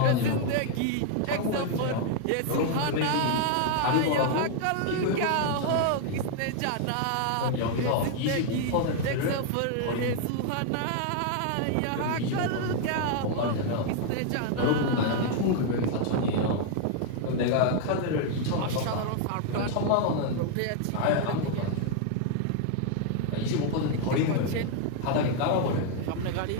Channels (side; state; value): both; different; correlation 0.00